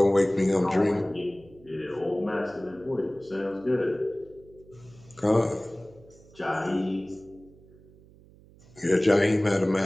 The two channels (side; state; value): right; noise; hum, 25 dB below the sound